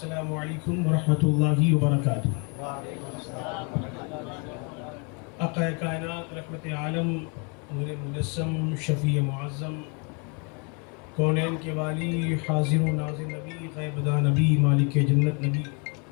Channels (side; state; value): right; quieter; 34.5 dB